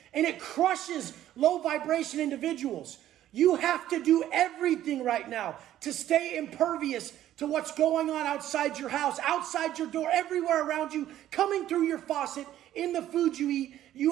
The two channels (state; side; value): quieter; left; 12.5 dB